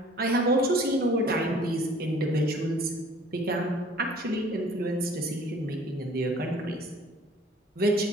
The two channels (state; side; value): normal; both; correlation 0.52